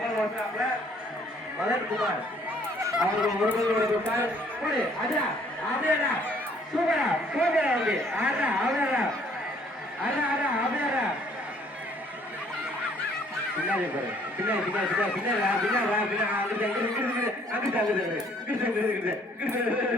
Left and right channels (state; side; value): normal; both; correlation 0.61